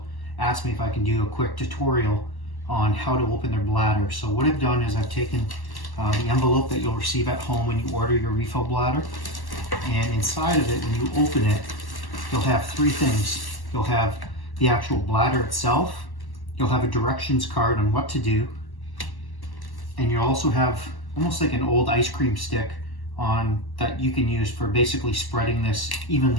ask me if I can do a quick tutorial on how to open their bladder. So what I've done is I've taken the envelope that you'll receive at home when you order your refill bladder, and inside of it, when you open it, you'll have three things. You'll have the actual bladder itself, you'll have a directions card on what to do, and you'll also have almost like an old ice cream stick on that you can use for basically spreading this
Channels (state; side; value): late; right; 1.1 ms